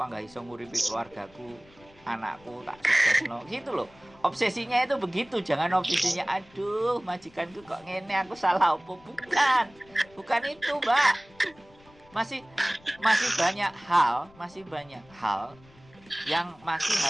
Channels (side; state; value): left; noise; rumble, 27 dB below the sound